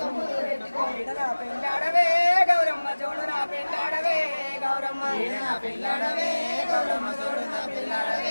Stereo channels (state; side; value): inverted; both; correlation -1.00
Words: పెట్టుకో ఈడన పెళ్ళాడవే గౌరమ్మ జోడున పెళ్ళాడవే గౌరమ్మ ఈడన పెళ్ళాడవే గౌరమ్మ జోడున